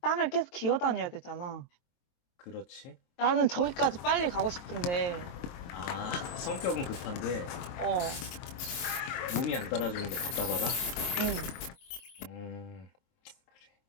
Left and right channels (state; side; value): late; right; 23 ms